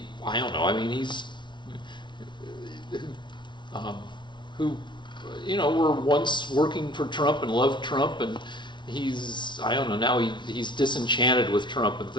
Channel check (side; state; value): right; late; 0.23 ms